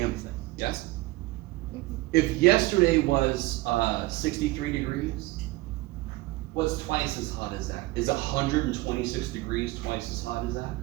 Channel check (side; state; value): left; quieter; 20.0 dB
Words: thing. Yes? If yesterday was 63 degrees, what's twice as hot as that? Is 126 degrees twice as hot as that?